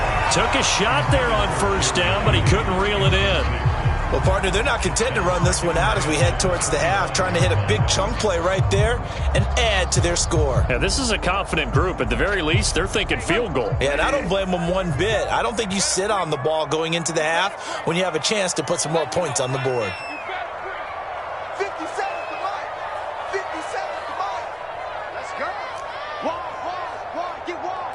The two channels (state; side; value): identical; both; correlation 1.00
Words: Took a shot there on first down, but he couldn't reel it in. Well, partner, they're not content to run this one out as we head towards the half, trying to hit a big chunk play right there and add to their score. Yeah, this is a confident group. At the very least, they're thinking field goal. Yeah, and I don't blame them one bit. I don't think you sit on the ball going into the half when you have a chance to put some more points on the board. 50 seconds to life. 50 seconds to life. Let's go. Wide, get